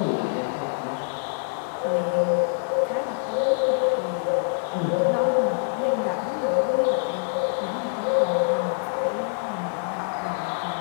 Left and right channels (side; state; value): right; silent; digital silence